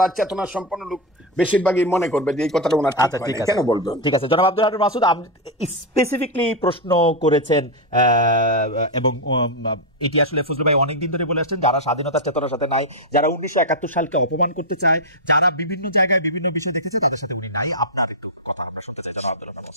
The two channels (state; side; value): normal; both; correlation 0.02